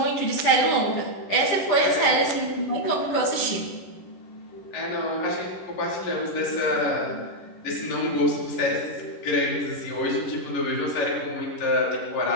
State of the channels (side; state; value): right; late; 11 ms